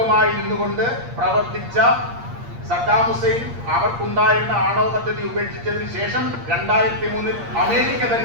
ഇരുന്നുകൊണ്ട് പ്രവർത്തിച്ച സദ്ദാം ഹുസൈൻ അവർക്കുണ്ടായിരുന്ന ആണവ പദ്ധതി ഉപേക്ഷിച്ചതിന് ശേഷം 2003 അമേരിക്ക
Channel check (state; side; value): late; left; 8.5 ms